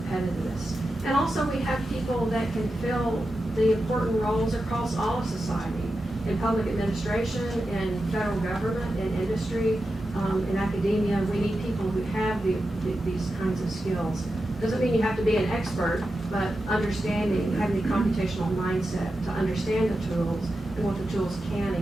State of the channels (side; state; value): both; normal; correlation 0.90